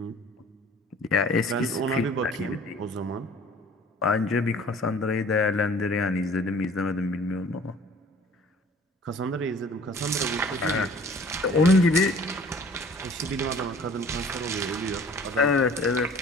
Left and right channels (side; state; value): both; normal; correlation 0.50